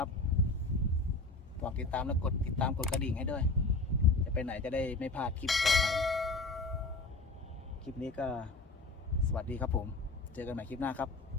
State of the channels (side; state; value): right; quieter; 3.3 dB